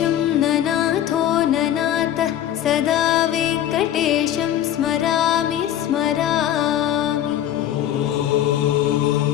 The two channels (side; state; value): right; quieter; 11.5 dB